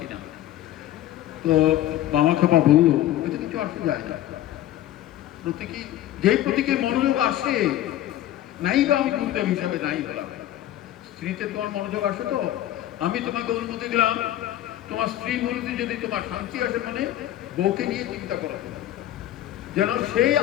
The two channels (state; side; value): quieter; right; 13.3 dB